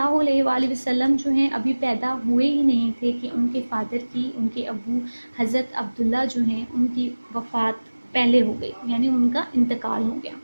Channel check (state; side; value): inverted; both; correlation -1.00